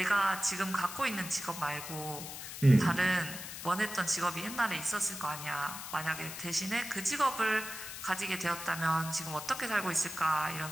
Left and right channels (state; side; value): noise; left; hiss, 9 dB below the sound